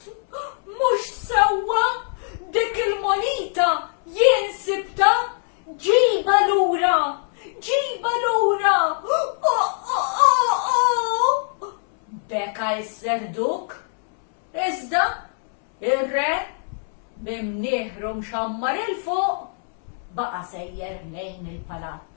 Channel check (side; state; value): right; silent; 64 dB below the other